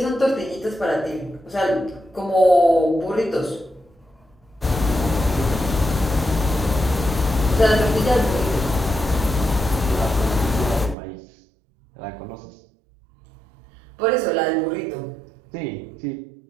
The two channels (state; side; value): drops out; left; at 11.0 s